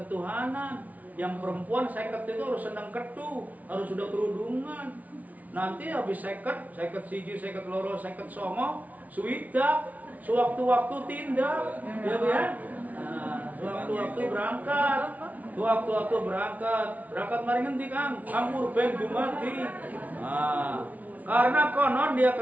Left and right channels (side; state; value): left; late; 0.073 ms